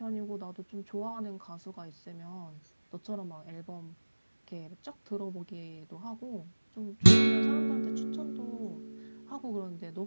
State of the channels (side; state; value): both; inverted; correlation -1.00